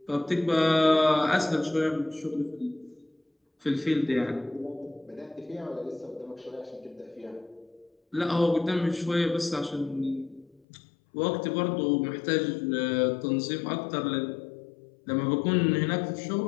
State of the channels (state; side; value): drops out; right; at 10.6 s